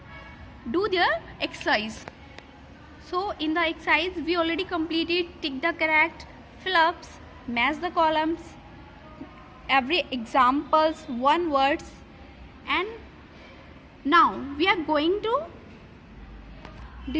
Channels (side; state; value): both; identical; correlation 1.00